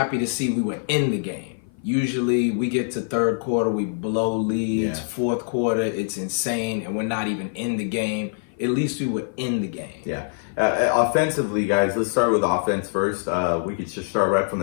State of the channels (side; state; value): right; silent; 56 dB below the other